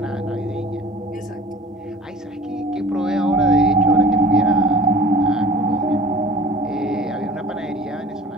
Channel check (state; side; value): normal; both; correlation 0.43